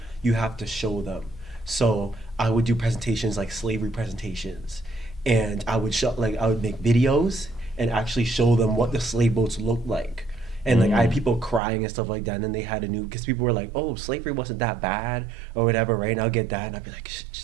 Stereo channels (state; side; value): drops out; left; at 11.6 s